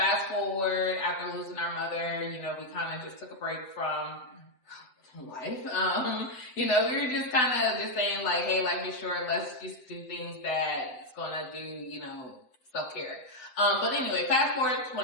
forward after losing our mother, we kind of just took a break from life. We were just kind of just saying like, hey, life is short. Let's just do things that's gonna do, self-care. But anyway, fast forward to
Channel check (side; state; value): right; late; 7.7 ms